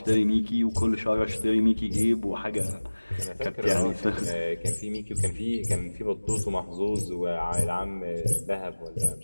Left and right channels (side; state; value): both; inverted; correlation -1.00